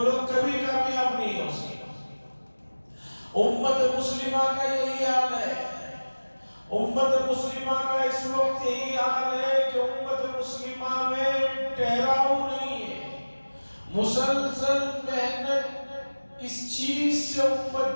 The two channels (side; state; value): both; inverted; correlation -1.00